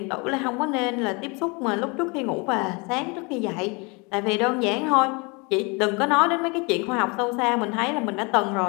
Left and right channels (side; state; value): right; quieter; 29.7 dB